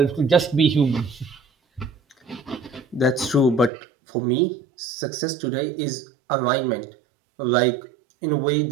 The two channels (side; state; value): left; drops out; at 3.7 s